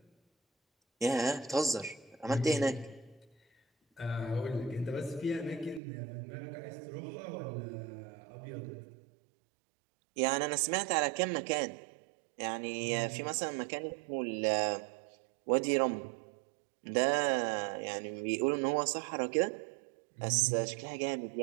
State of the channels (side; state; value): left; drops out; at 5.8 s